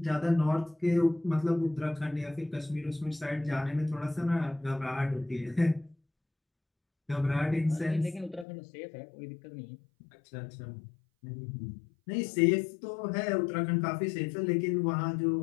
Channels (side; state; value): right; drops out; at 8.5 s